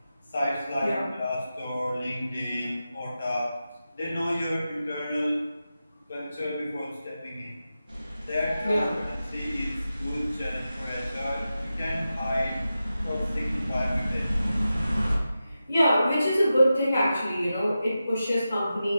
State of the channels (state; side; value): inverted; both; correlation -0.92